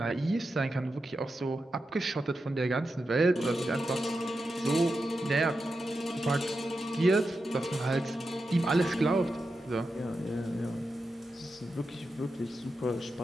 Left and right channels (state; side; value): normal; both; correlation 0.89